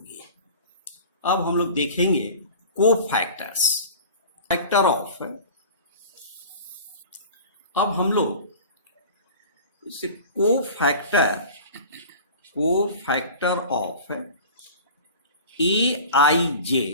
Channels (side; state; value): both; inverted; correlation -0.39